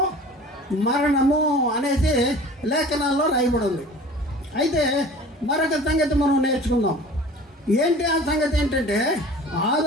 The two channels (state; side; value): normal; both; correlation 0.43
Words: మరణము అనేసి లేఖనాల్లో రాయబడి ఉంది. అయితే మరొక సంగతి మనం నేర్చుకుందాం. ఏంటి ఆ సంగతి? ఏంటంటే